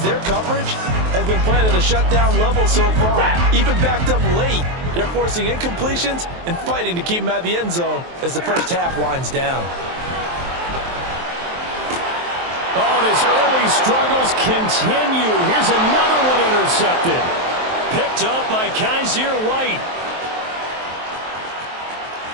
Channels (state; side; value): late; left; 23 ms